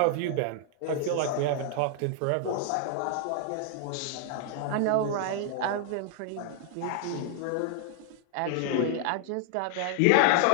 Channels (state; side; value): different; both; correlation 0.00